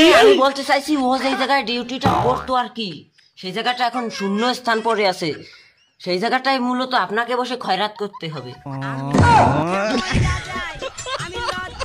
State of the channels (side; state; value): both; identical; correlation 1.00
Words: আমি বলতে চাইছি ও যে জায়গায় ডিউটিটা করতো আর কি, সেই জায়গাটা এখন শূন্য স্থান পড়ে আছে, সেই জায়গাটায় মূলত আপনাকে বসে খয়রাত করতে হবে।